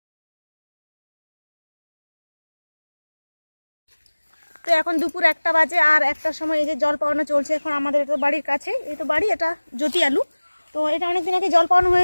তো এখন দুপুর 1টা বাজে আর 1টার সময় এই যে জল পাওয়ানো চলছে। এখন আমাদের তো বাড়ির কাছে এই তো বাড়ি, এটা জ্যোতি আলু। তো এটা অনেকদিন আগে জল পাওয়ানো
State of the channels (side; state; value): both; inverted; correlation -1.00